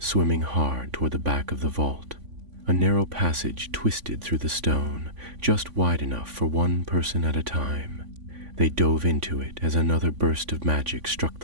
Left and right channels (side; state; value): left; late; 3.5 ms